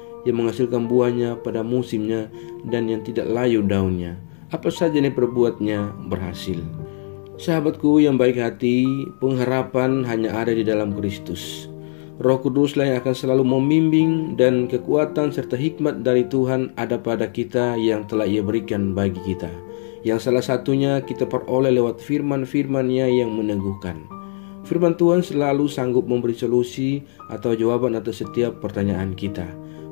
yang menghasilkan buahnya pada musimnya, dan yang tidak layu daunnya. Apa saja yang diperbuatnya berhasil. Sahabatku yang baik hati, pengharapan hanya ada di dalam Kristus. Roh Kuduslah yang akan selalu membimbing, dan kekuatan serta hikmat dari Tuhan ada pada kita yang telah Ia berikan bagi kita, yang salah satunya kita peroleh lewat firman-firman-Nya yang meneguhkan. Firman Tuhan selalu sanggup memberi solusi atau jawaban atas setiap pertanyaan kita,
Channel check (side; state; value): right; silent; digital silence